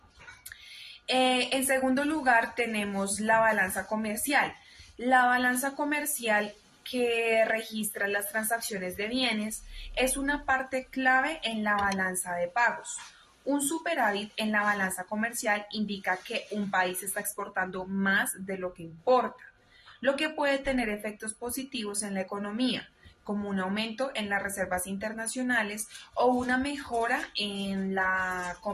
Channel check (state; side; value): identical; both; correlation 1.00